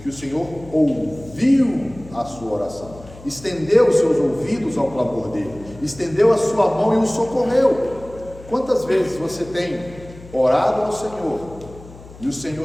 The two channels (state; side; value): noise; left; hum, 19 dB below the sound